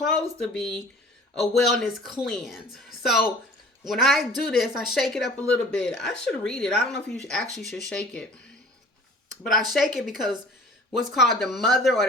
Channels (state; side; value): normal; both; correlation 0.47